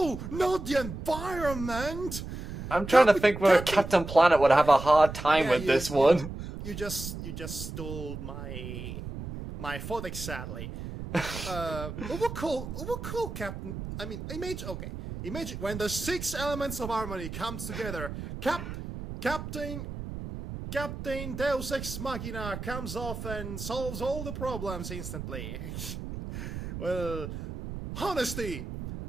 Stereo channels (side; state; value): right; noise; rumble, 8 dB below the sound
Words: Not the environment! I'm trying to think where Captain Planet would have a hard time with this one. You just stole my thought, sadly. What cool Captain? I mean, imagine when the 6 elements of harmony comes together. Captain Deus Ex Machina comes off and solves all the problems instantly. Well, honesty,